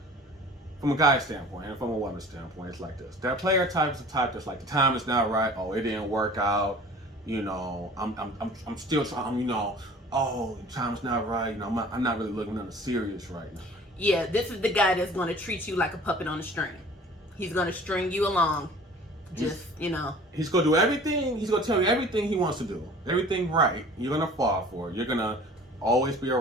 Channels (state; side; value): normal; both; correlation 0.46